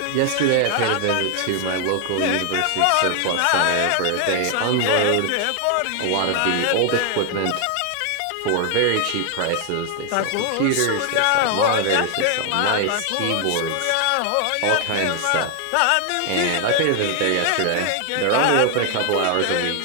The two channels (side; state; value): both; different; correlation 0.00